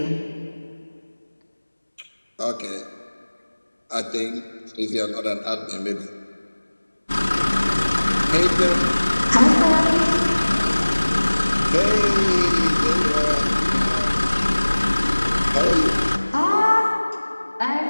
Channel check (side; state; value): both; inverted; correlation -1.00